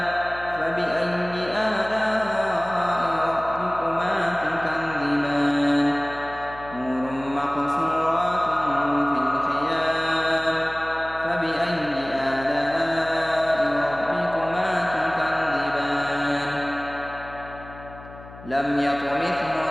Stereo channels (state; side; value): noise; left; hum, 17 dB below the sound